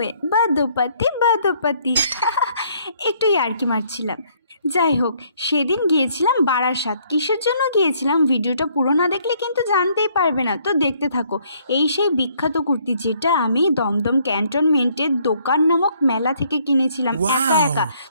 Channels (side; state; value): both; inverted; correlation -0.66